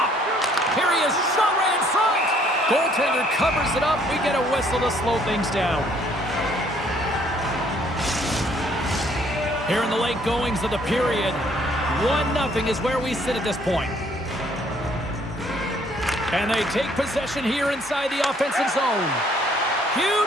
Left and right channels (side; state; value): both; normal; correlation 0.63